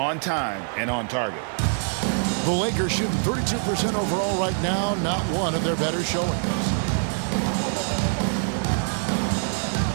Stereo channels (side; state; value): left; silent; digital silence